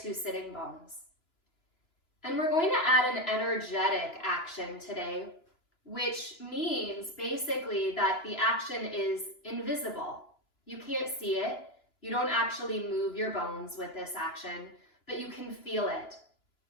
sitting bones. And we're going to add an energetic action today, which means basically that the action is invisible. You can't see it. You don't actually move your bones with this action, but you can feel it.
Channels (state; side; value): late; right; 2.9 ms